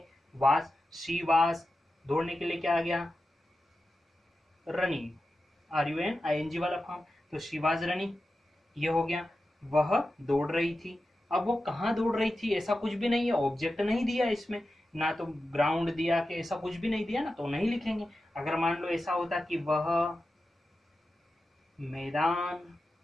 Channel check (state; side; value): normal; both; correlation 0.92